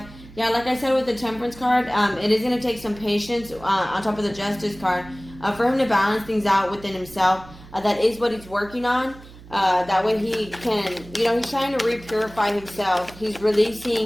Yeah, like I said with the Temperance card, it is going to take some patience on top of the Justice card for him to balance things out within himself. That is what he's working on. That way he can, he's trying to re-purify himself. He's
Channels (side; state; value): right; noise; hum, 19 dB below the sound